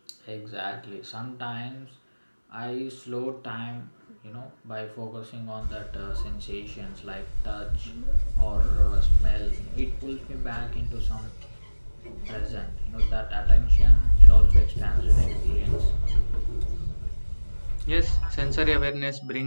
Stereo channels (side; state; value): both; inverted; correlation -1.00